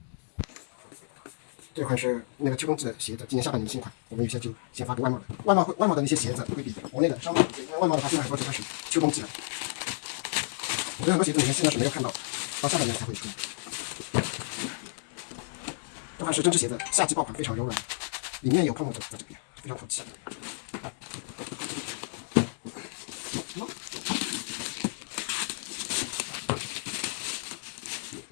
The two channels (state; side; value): silent; right; digital silence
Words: 这款是那个秋冬季的鞋子，今年下半年新款，我们有些就先发给外贸的。外贸的那些鞋子会比国内的稍微好一些，因为外贸的话现在很多就开始秋冬季了。我觉得很多鞋子你们现在是没有看到，到下半年才会出。这款是针织鞋子，夏季爆款，非常柔软，里面有泡沫在这边，非常透气。